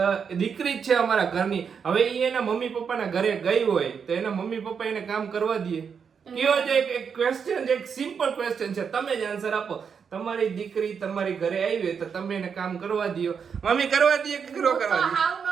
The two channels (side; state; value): left; quieter; 6.6 dB